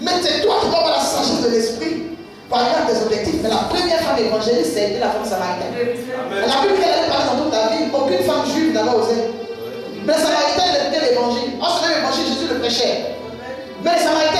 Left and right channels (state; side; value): identical; both; correlation 1.00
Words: Mais c'est toi qui dois avoir la sagesse de l'esprit pour arriver à tes objectifs. Mais la première femme évangéliste, c'était la femme samaritaine. La Bible, qu'elle allait parler dans toute la ville, aucune femme juive n'avait osé. Mais les Samaritains, ils écoutaient l'évangile. En ce même évangile, Jésus le prêchait. Mais les